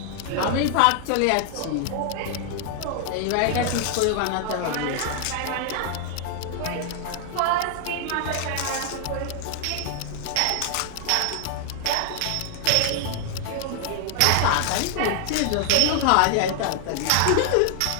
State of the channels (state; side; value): different; both; correlation 0.00